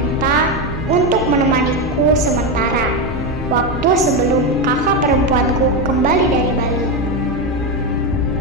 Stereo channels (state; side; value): normal; both; correlation 0.11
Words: untuk menemaniku sementara waktu sebelum kakak perempuanku kembali dari Bali.